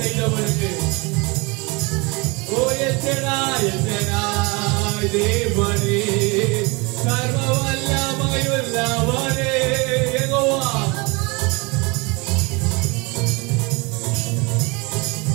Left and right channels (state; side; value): quieter; left; 27.4 dB